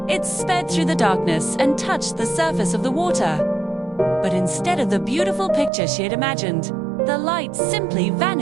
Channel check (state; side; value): drops out; left; at 5.7 s